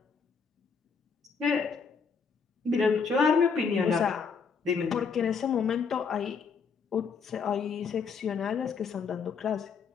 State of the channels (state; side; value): quieter; right; 5.6 dB